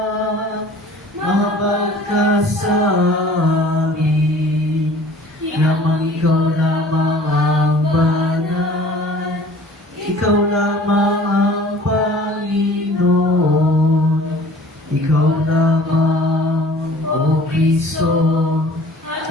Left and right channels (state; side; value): normal; both; correlation 0.49